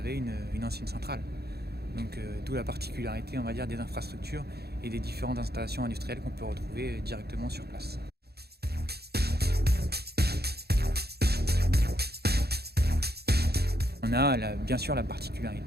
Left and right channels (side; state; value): left; late; 0.47 ms